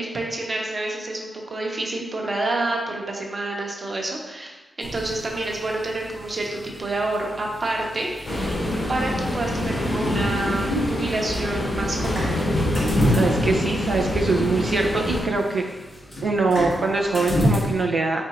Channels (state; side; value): normal; both; correlation 0.83